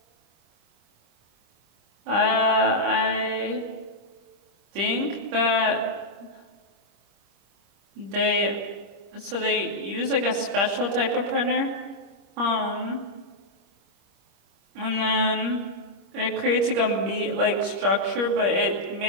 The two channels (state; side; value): late; left; 25 ms